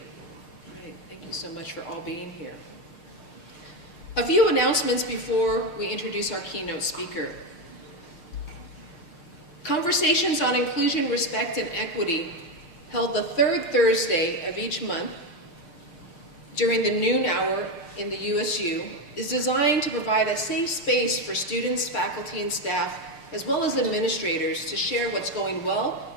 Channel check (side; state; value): right; late; 6.6 ms